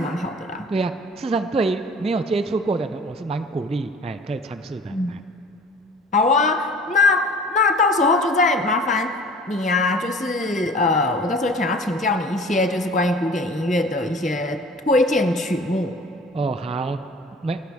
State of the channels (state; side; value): normal; both; correlation 0.45